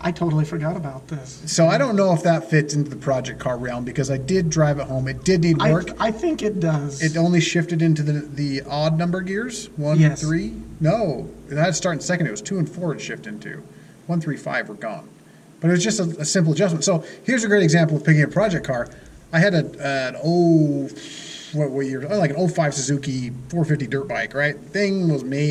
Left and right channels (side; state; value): both; identical; correlation 1.00